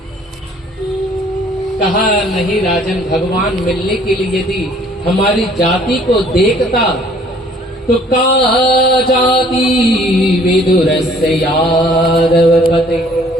कहा नहीं राजन, भगवान मिलने के लिए यदि हमारी जाति को देखता तो का जाति विदुरस्य यादव पते।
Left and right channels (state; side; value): normal; both; correlation 0.57